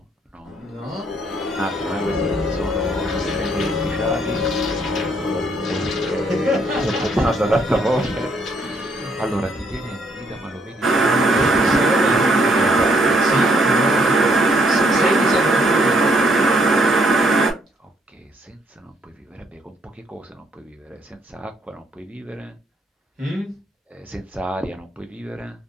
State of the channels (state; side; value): normal; both; correlation 0.70